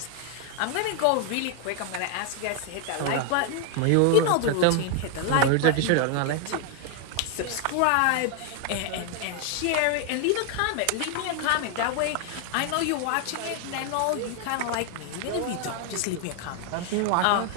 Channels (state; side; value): different; both; correlation 0.00